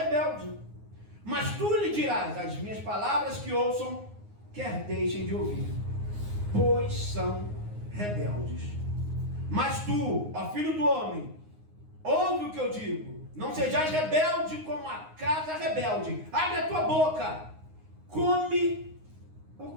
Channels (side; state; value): left; late; 9.6 ms